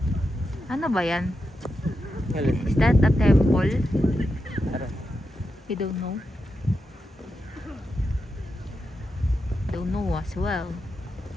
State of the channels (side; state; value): both; normal; correlation 0.87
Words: Ano ba yan? Is that a temple? You don't know? Don't know as well.